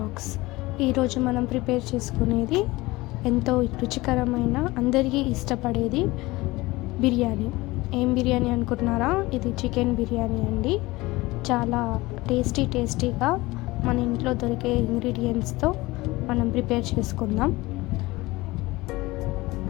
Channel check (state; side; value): quieter; right; 20.6 dB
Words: ఈరోజు మనం prepare చేసుకునేది ఎంతో రుచికరమైన అందరికీ ఇష్టపడేది బిర్యానీ. ఏం బిర్యానీ అనుకుంటున్నారా? ఇది చికెన్ బిర్యానీ అండి. చాలా టేస్టీగా మన ఇంట్లో దొరికే ఇంగ్రీడియంట్స్తో మనం ప్రిపేర్ చేసుకుందాం.